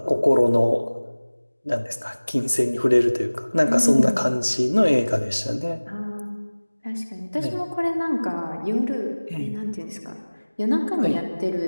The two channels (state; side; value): inverted; both; correlation -1.00